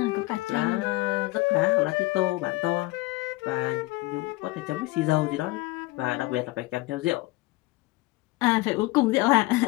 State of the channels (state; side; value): quieter; right; 21.0 dB